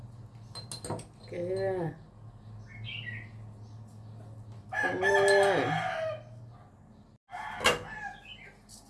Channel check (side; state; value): both; identical; correlation 1.00